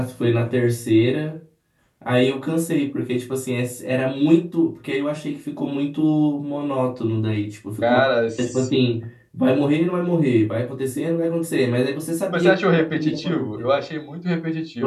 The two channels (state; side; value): identical; both; correlation 1.00